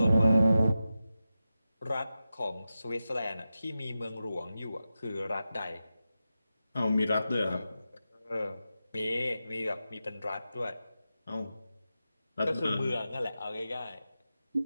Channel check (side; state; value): both; inverted; correlation -0.92